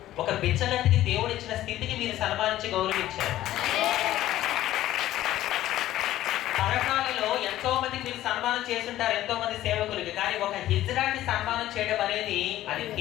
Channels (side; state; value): right; quieter; 14.1 dB